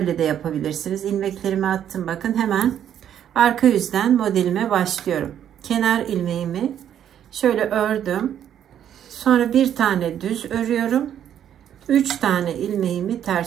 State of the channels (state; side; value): quieter; left; 9.9 dB